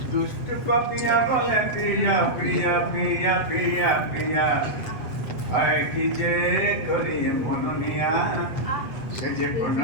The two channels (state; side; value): late; right; 8.0 ms